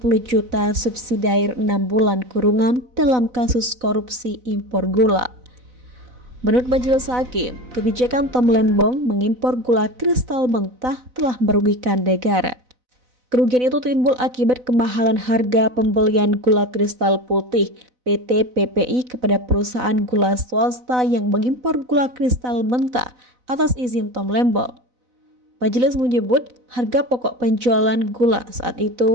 juta subsidi 6 bulan kurungan dalam kasus korupsi impor gula. Menurut majelis hakim, kebijakan Tom Lembong mengimpor gula kristal mentah telah merugikan negara. Kerugian itu timbul akibat kemahalan harga pembelian gula kristal putih PT PPI kepada perusahaan gula swasta yang mengimpor gula kristal mentah atas izin Tom Lembong. Majelis menyebut harga pokok penjualan gula saat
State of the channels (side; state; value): left; late; 4.0 ms